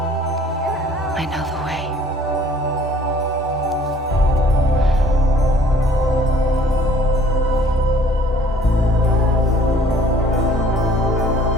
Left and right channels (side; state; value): both; normal; correlation 0.56